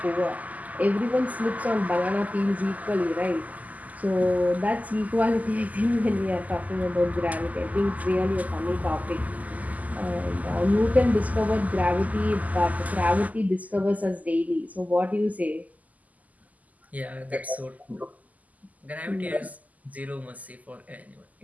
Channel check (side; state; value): left; late; 0.077 ms